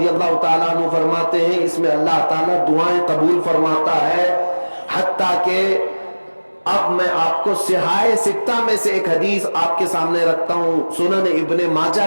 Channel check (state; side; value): inverted; both; correlation -1.00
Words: اللہ تعالیٰ عنہ فرماتے ہیں اس میں اللہ تعالیٰ دعائیں قبول فرماتا ہے۔ حتیٰ کہ اب میں آپ کو صحاح ستہ میں سے ایک حدیث آپ کے سامنے رکھتا ہوں، سنن ابن ماجہ